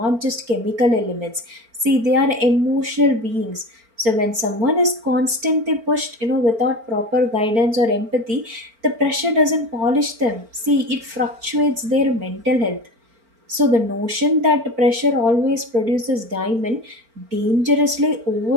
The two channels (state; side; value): late; left; 4.4 ms